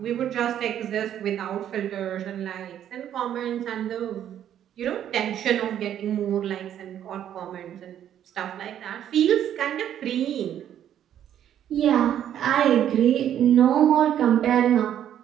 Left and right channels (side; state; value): left; quieter; 10.4 dB